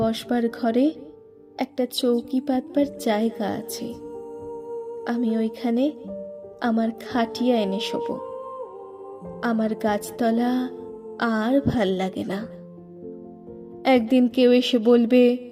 বসবার ঘরে একটা চৌকি পাতবার জায়গা আছে, আমি ওইখানে আমার খাটিয়া এনে শোবো। আমার গাছতলা আর ভাল লাগে না। একদিন কেউ এসে বলবে,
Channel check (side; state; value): both; identical; correlation 1.00